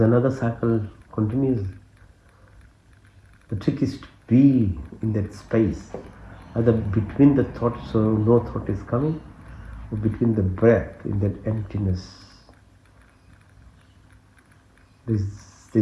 another cycle continues. The trick is to be in that space. Either between the thoughts, so no thought is coming, or between the breath, in that emptiness.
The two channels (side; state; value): both; identical; correlation 1.00